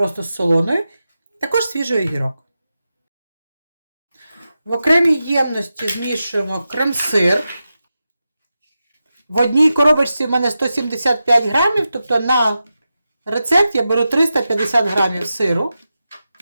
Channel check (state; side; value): inverted; both; correlation -0.91